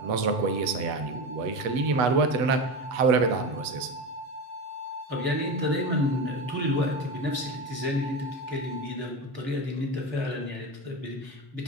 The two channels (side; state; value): left; late; 8.0 ms